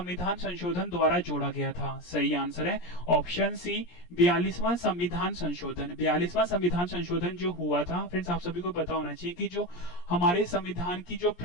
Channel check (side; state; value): right; late; 17 ms